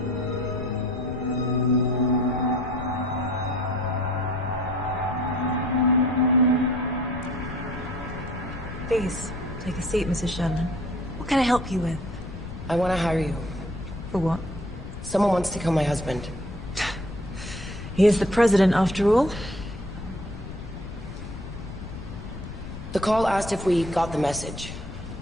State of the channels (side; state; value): left; noise; rumble, 10 dB below the sound